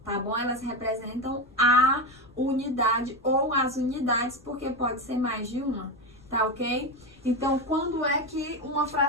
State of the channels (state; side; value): noise; left; rumble, 28 dB below the sound